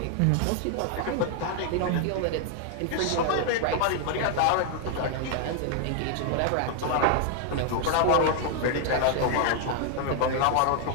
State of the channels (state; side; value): different; both; correlation 0.00